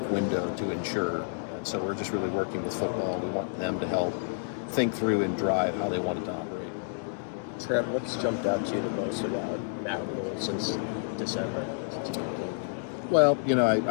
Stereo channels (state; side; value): silent; right; digital silence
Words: window to ensure. And so we're just really working with football. We want them to help think through and drive how they want it to operate. Trev, what's jumped out to you the most about Matt Rhule since December? Well,